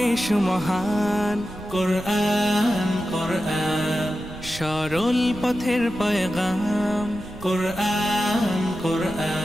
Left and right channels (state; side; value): noise; right; rumble, 15 dB below the sound